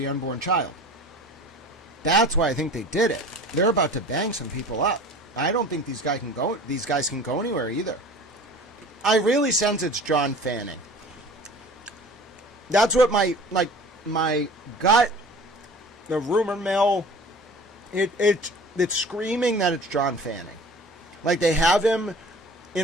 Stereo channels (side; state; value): both; normal; correlation 0.42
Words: unborn child. That's why I think they did it. They're about to bang some people up. I don't think these guys can go anywhere either. I really sense it's John Fanning. That's what my gut, the rumor mill, it's screaming that it's John Fanning. Like, they have him